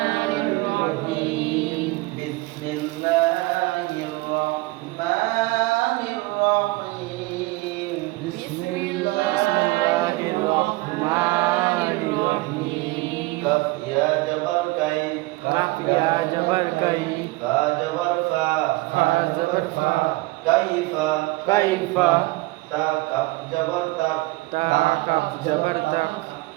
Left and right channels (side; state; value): left; quieter; 21.6 dB